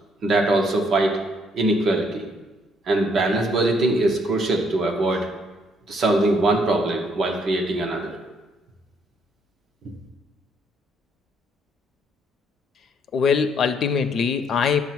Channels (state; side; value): normal; both; correlation 0.69